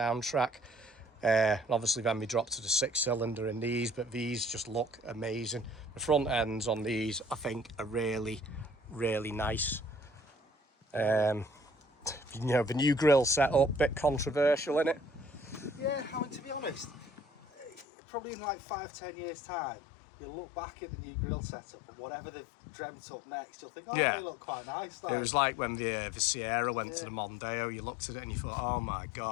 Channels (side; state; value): right; drops out; at 17.9 s